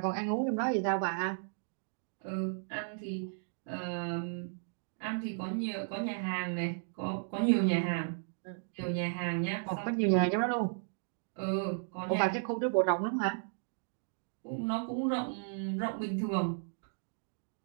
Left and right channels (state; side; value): silent; left; digital silence